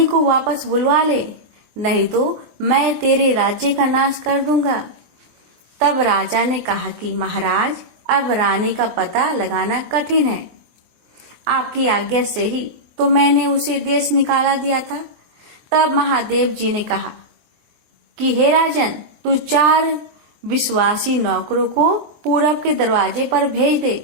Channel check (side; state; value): left; late; 24 ms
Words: को वापस बुलवा ले, नहीं तो मैं तेरे राज्य का नाश कर दूंगा। तब राजा ने कहा कि महाराज, अब रानी का पता लगाना कठिन है। आपकी आज्ञा से ही तो मैंने उसे देश निकाला दिया था। तब महादेव जी ने कहा कि हे राजन, तू 4 विश्वासी नौकरों को पूरब के दरवाजे पर भेज